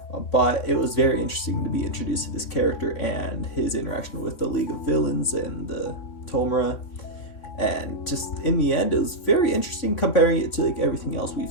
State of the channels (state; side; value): late; right; 3.6 ms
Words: But it was very interesting to be introduced to this character and his interaction with the League of Villains and the Tomura. And just in the end, it was very interesting comparing it to like everything else we've